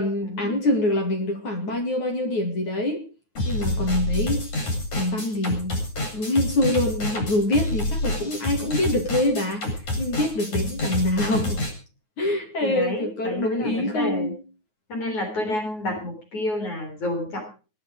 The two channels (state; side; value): late; right; 9.4 ms